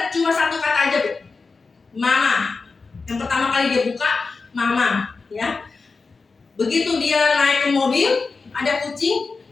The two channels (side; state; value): right; quieter; 4.3 dB